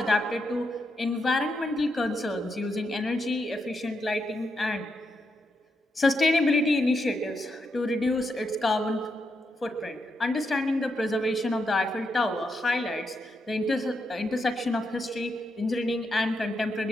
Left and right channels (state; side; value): normal; both; correlation 0.83